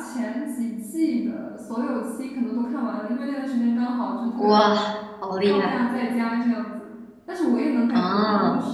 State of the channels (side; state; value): both; identical; correlation 1.00